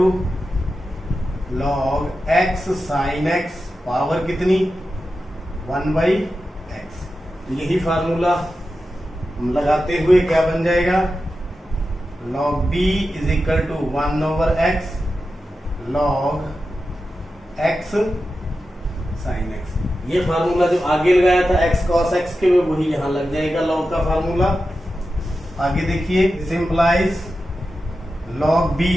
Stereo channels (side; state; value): both; normal; correlation 0.91